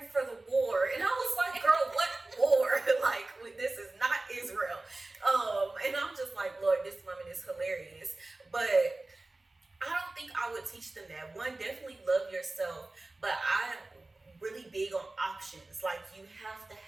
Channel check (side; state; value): left; quieter; 3.0 dB